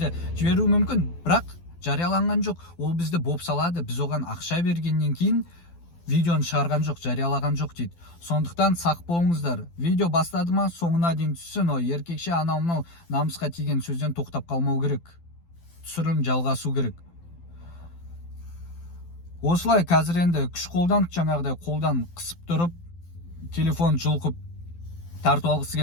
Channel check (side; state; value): right; late; 12 ms